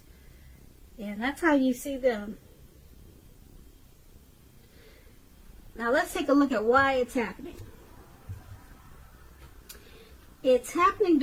And that's how you see them. Now let's take a look at why it's happening. It's happening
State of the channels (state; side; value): identical; both; correlation 1.00